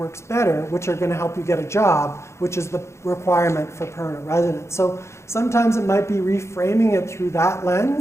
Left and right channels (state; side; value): late; right; 0.13 ms